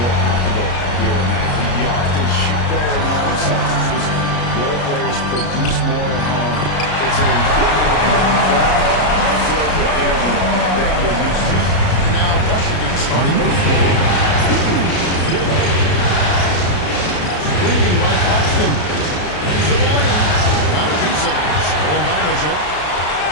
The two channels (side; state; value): right; late; 33 ms